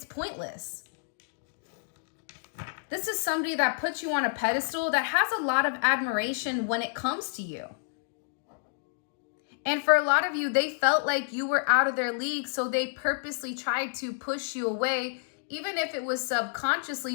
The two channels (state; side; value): silent; right; digital silence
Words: pointless. This is somebody that puts you on a pedestal, that has a lot of admiration when it comes to you. And for a lot of you, they felt like you were out of their league, so they purposely tried to push you away, even if it was